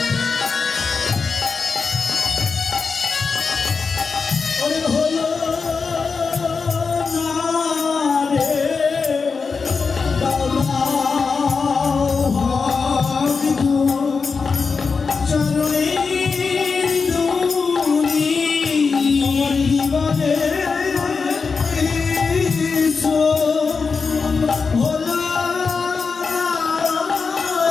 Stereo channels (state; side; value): quieter; right; 5.0 dB